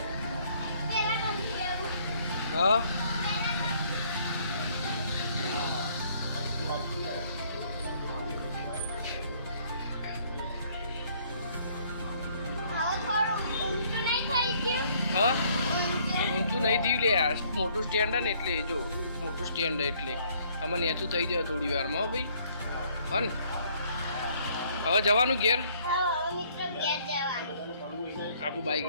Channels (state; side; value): inverted; both; correlation -0.63